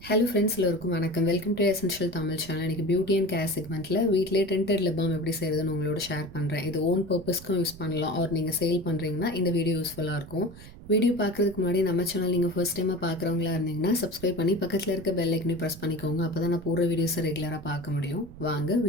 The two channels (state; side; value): noise; right; rumble, 17 dB below the sound